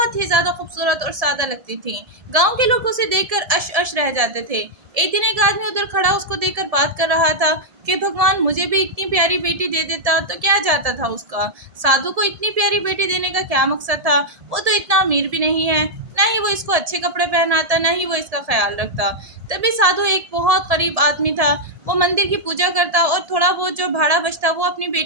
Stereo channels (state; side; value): late; left; 1.7 ms